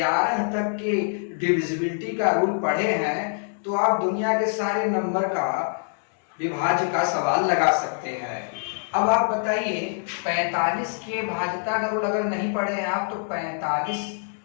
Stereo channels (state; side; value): silent; right; digital silence